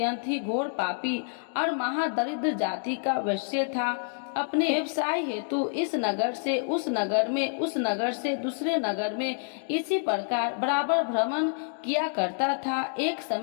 ही घोर पापी और महादरिद्र जाति का वैश्य था। अपने व्यवसाय हेतु इस नगर से उस नगर में, उस नगर से दूसरे नगर में इसी प्रकार बराबर भ्रमण किया करता था। एक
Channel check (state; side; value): silent; right; digital silence